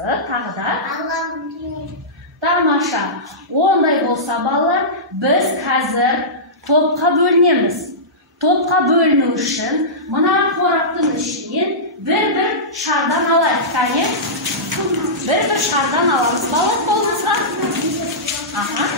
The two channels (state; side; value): normal; both; correlation -0.17